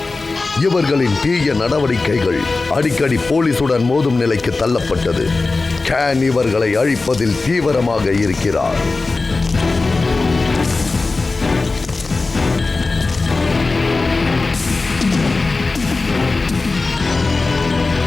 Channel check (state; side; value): quieter; right; 3.6 dB